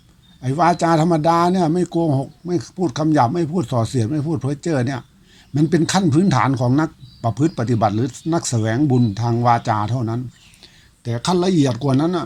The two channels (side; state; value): both; identical; correlation 1.00